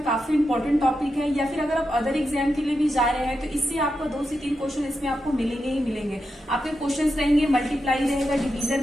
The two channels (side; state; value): both; normal; correlation 0.87